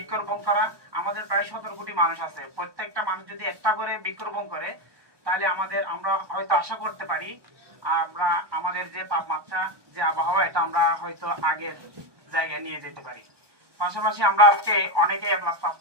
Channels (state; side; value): late; left; 1.2 ms